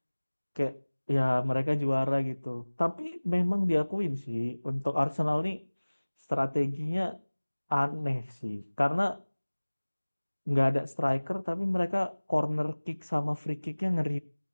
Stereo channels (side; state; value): both; inverted; correlation -1.00